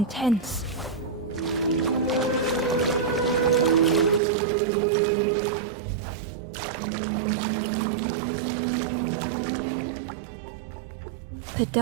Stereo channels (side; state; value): left; drops out; at 4.2 s